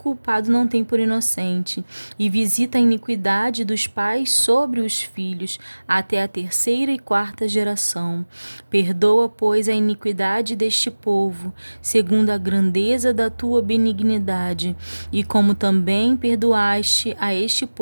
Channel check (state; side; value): inverted; both; correlation -1.00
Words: e visita a iniquidade dos pais sobre os filhos até a terceira e quarta geração. Perdoa, pois, a iniquidade deste povo, segundo a grandeza da tua benignidade, e como também perdoaste a este